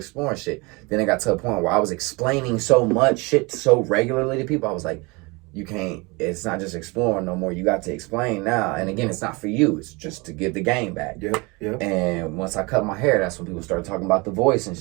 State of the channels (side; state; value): left; quieter; 26.8 dB